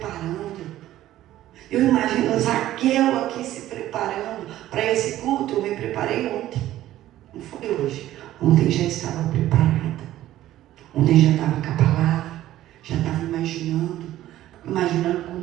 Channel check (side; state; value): left; quieter; 13.9 dB